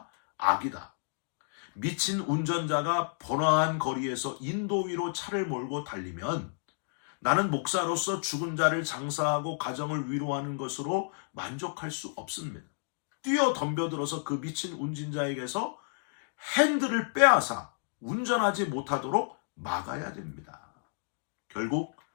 악이다. 미친 운전자가 번화한 거리에서 인도 위로 차를 몰고 달리면 나는 목사로서 죽은 자를 장사하고 가정을 위로하는 것으로 만족할 수 없습니다. 뛰어 덤벼들어서 그 미친 운전자에게서 핸들을 빼앗아 운전하지 못하도록 막아야 됩니다. 결국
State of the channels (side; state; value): right; silent; digital silence